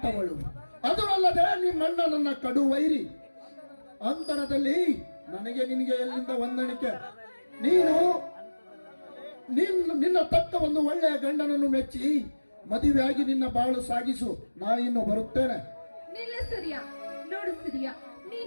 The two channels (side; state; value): both; inverted; correlation -1.00